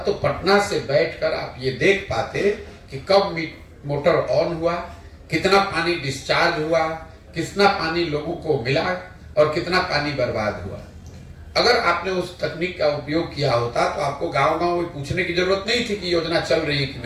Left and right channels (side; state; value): both; identical; correlation 1.00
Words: पटना से बैठकर आप ये देख पाते कि कब मोटर ऑन हुआ, कितना पानी डिस्चार्ज हुआ, कितना पानी लोगों को मिला और कितना पानी बर्बाद हुआ। अगर आपने उस तकनीक का उपयोग किया होता तो आपको गांव-गांव पूछने की जरूरत नहीं थी कि योजना चल रही है कि